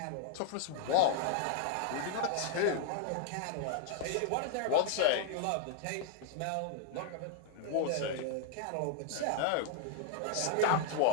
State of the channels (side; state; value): both; different; correlation 0.00